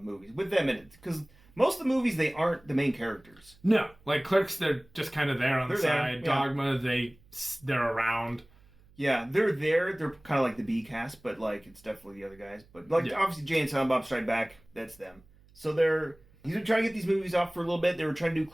movies, with them in it. Because most of the movies, they aren't the main characters. No, Clerks, they're just kind of there on the side. Yeah. Dogma, they're around. Yeah, they're there. They're kind of like the B cast, but it's definitely the other guys. But obviously, Jay and Silent Bob Strike Back, that's them. So he's been trying to get these movies off for a little bit. They were trying to do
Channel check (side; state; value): right; noise; hum, 28 dB below the sound